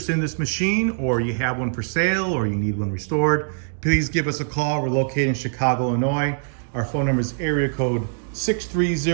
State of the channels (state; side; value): silent; left; digital silence